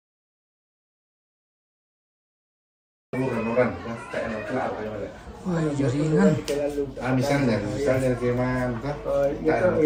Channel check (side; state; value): both; identical; correlation 1.00